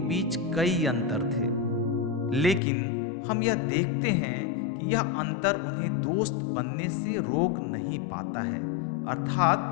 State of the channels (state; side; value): drops out; right; at 2.6 s